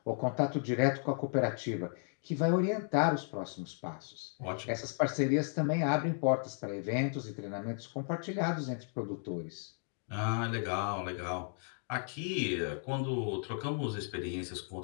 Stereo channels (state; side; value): silent; right; 55 dB below the other